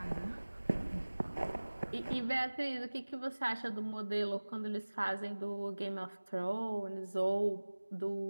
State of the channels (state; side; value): inverted; both; correlation -1.00